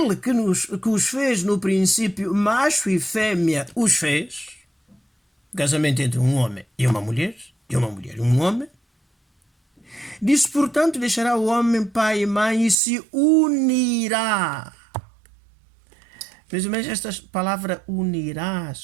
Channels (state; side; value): drops out; left; at 12.8 s